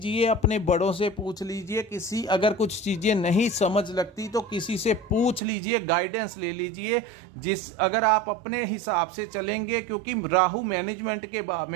अपने बड़ों से पूछ लीजिए। किसी अगर कुछ चीज़ें नहीं समझ लगती तो किसी से पूछ लीजिए, गाइडेंस ले लीजिए। अगर आप अपने हिसाब से चलेंगे, क्योंकि राहु मैनेजमेंट के भाव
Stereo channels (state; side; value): drops out; left; at 5.4 s